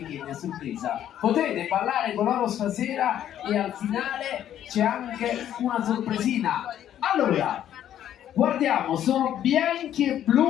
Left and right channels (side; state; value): right; quieter; 10.9 dB